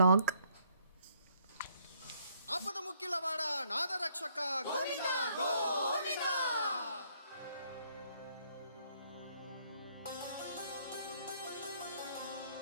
ఆపద ముక్కిలవాడ నాదరక్షక గోవింద గోవింద.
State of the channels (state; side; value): inverted; both; correlation -0.67